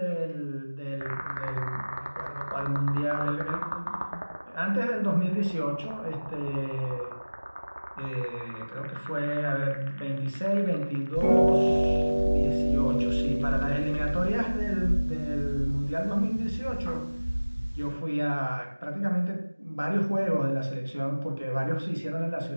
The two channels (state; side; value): inverted; both; correlation -1.00